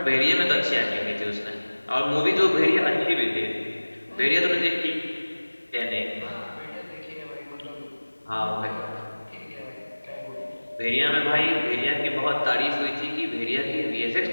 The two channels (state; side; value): inverted; both; correlation -1.00